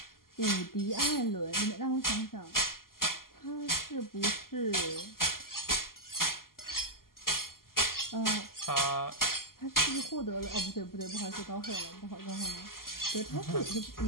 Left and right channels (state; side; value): late; right; 0.92 ms